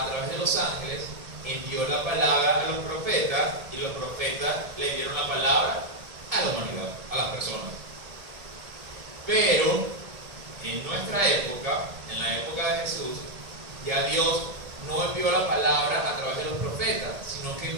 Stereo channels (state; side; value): late; left; 1.8 ms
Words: través de los ángeles, envió la palabra a los profetas y los profetas le dieron la palabra a la humanidad, a las personas. Pero en nuestra época, en la época de Jesús, ya Dios no envió la palabra a través de los profetas, sino que